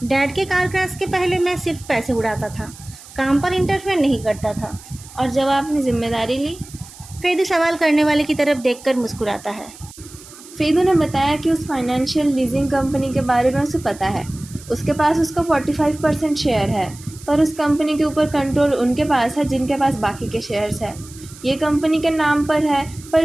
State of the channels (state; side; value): noise; right; hiss, 19 dB below the sound